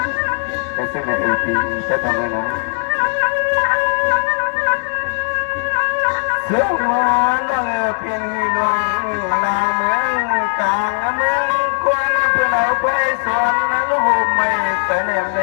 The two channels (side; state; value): right; silent; digital silence